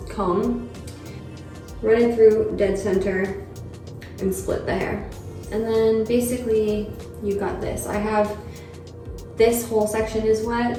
comb, run it through dead center, and split the hair. And then basically you got this. I have this whole section is wet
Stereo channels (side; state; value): both; identical; correlation 1.00